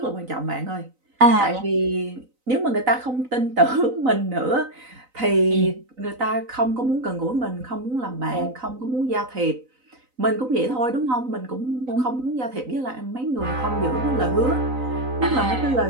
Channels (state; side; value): late; left; 3.9 ms